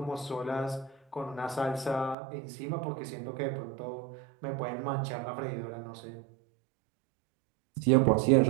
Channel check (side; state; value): left; drops out; at 2.1 s